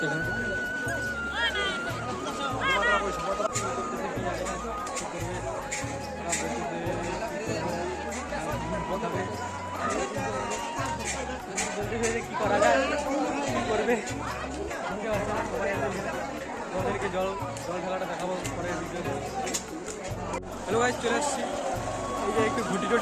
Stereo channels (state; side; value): identical; both; correlation 1.00